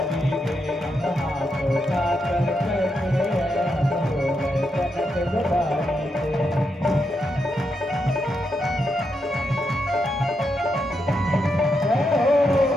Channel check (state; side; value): normal; both; correlation 0.83